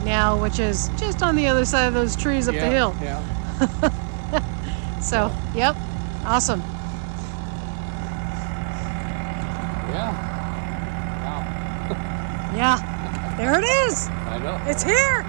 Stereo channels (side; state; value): left; silent; digital silence